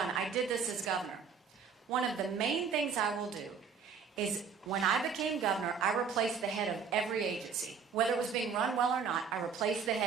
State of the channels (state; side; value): quieter; left; 6.1 dB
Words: I did this as governor. One of the main things I will do is when I became governor, I replaced the head of every agency. Whether it was being run well or not, I replaced the